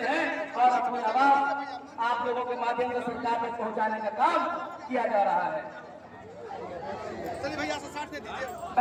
हैं और अपनी आवाज आप लोगों के माध्यम से सरकार में पहुंचाने का काम किया जा रहा है।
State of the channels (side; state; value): both; identical; correlation 1.00